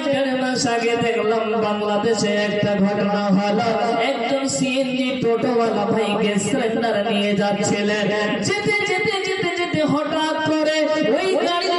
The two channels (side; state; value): both; identical; correlation 1.00